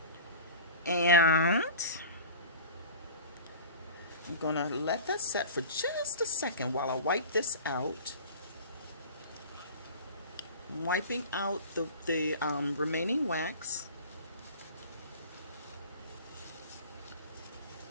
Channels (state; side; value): inverted; both; correlation -0.37